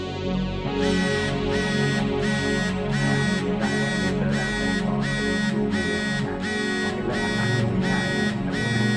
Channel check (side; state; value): both; identical; correlation 1.00